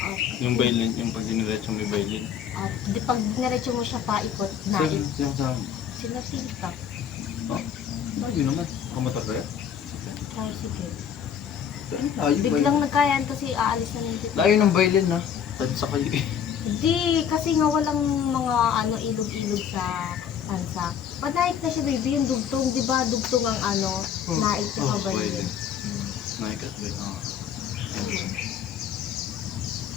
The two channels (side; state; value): right; quieter; 8.1 dB